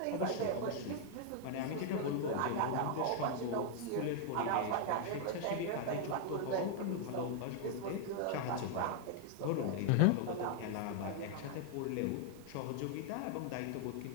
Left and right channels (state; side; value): different; both; correlation 0.00